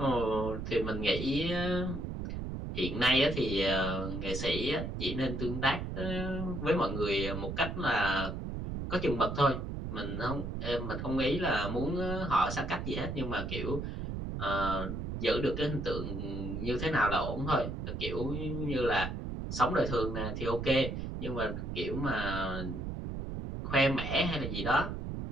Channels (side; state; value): right; noise; rumble, 5 dB below the sound